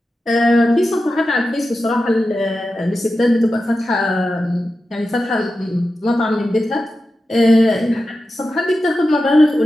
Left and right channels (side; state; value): both; normal; correlation 0.92